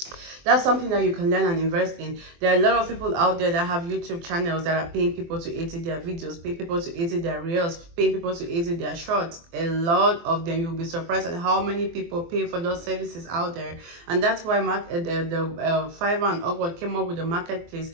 that's something that you can learn and invest in. There are a lot of people out there that have YouTube channels that are paying people to edit their videos, paying people to edit their reels, paying people to edit their shorts. A lot of them. You'll be surprised at how many people pay for those services out there. And that's why Fiverr and Upwork came up with the marketplace,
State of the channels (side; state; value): left; late; 24 ms